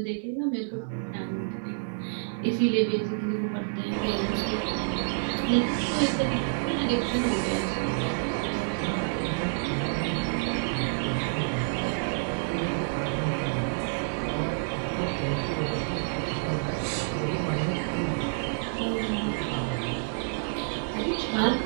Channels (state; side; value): silent; left; digital silence